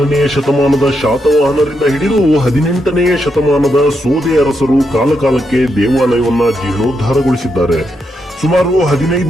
ಶತಮಾನದ ಶಾತವಾಹನರಿಂದ ಹಿಡಿದು 18ನೇ ಶತಮಾನದ ಸೋದೆ ಅರಸರು ಕಾಲಕಾಲಕ್ಕೆ ದೇವಾಲಯವನ್ನ ಜೀರ್ಣೋದ್ಧಾರಗೊಳಿಸಿದ್ದಾರೆ. ಸುಮಾರು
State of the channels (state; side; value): normal; both; correlation 0.82